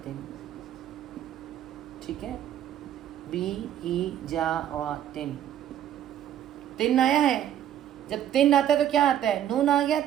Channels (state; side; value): quieter; left; 10.8 dB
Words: ٹھیک ہے، بی حجارۃ. تن آیا ہے، جب تن آتا ہے تو کیا آتا ہے؟ نون آ گیا